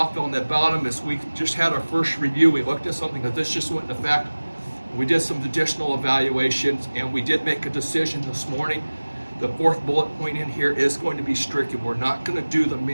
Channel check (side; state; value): both; inverted; correlation -1.00